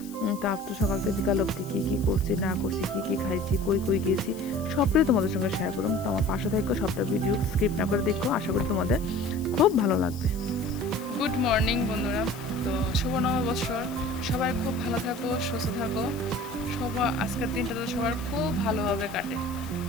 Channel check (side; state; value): left; noise; hiss, 18 dB below the sound